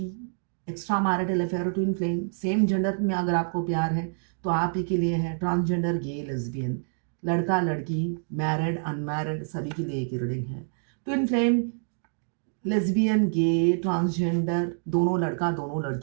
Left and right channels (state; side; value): silent; left; digital silence